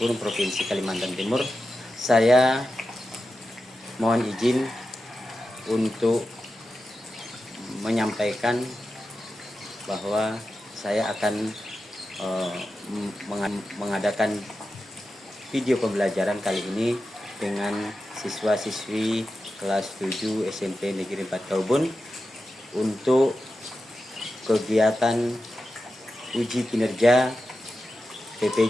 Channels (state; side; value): normal; both; correlation 0.91